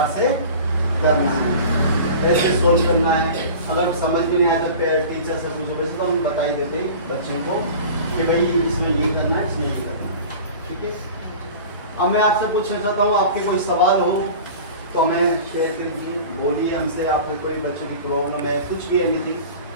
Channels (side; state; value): both; inverted; correlation -0.38